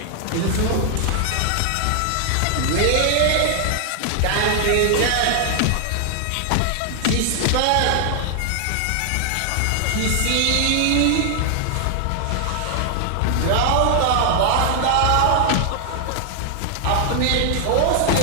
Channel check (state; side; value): different; both; correlation 0.00